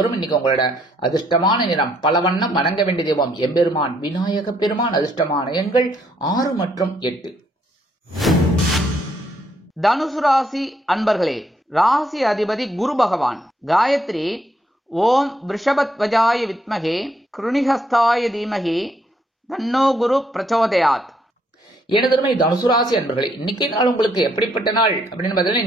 இன்னைக்கு உங்களோட அதிர்ஷ்டமான நிறம் பலவண்ணம். வணங்க வேண்டிய தெய்வம் எம்பெருமான் விநாயக பெருமான். அதிர்ஷ்டமான எண்கள் 6 மற்றும் 8. தனுசு ராசி அன்பர்களே, ராசி அதிபதி குரு பகவான். காயத்ரி ஓம் ரிஷபத்வஜாய வித்மகே கிருணிஹஸ்தாய தீமகி தன்னோ குரு பிரச்சோதயாத். எனதருமை தனுசு ராசி அன்பர்களே, இன்னைக்கு நாள் உங்களுக்கு எப்படிப்பட்ட நாள் அப்படின்னு பார்த்தீங்கன்னா,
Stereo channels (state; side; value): normal; both; correlation 0.71